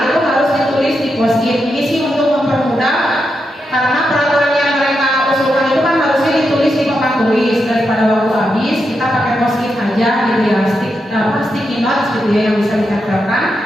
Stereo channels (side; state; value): both; normal; correlation 0.85